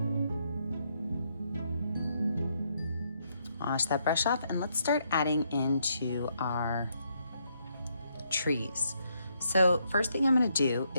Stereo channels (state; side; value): inverted; both; correlation -0.75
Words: Wash that brush off, and let's start adding into our trees. So first thing I'm going to do